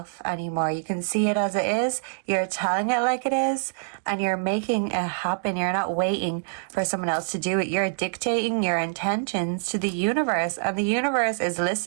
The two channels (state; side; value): silent; left; digital silence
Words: anymore. You can see it as it is. You're telling it like it is, and you're making it happen. You're not waiting for someone else to do it. You're dictating your intentions to the universe, and the universe is